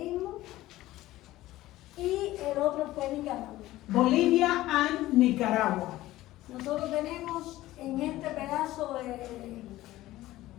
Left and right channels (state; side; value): quieter; right; 16.2 dB